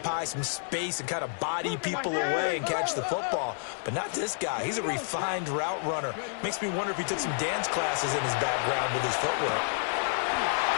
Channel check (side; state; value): right; silent; 58 dB below the other